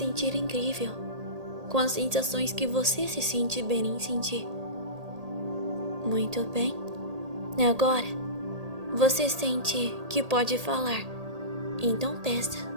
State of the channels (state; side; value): late; left; 1.8 ms